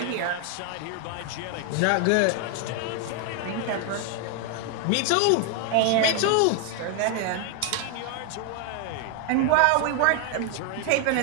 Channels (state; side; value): different; both; correlation 0.00